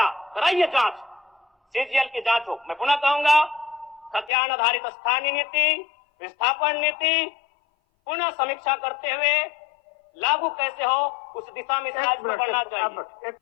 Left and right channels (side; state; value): right; drops out; at 4.3 s